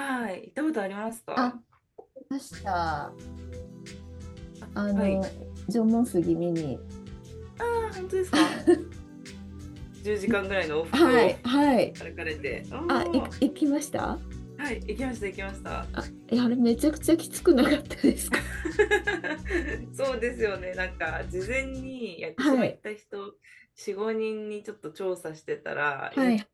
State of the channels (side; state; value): both; identical; correlation 1.00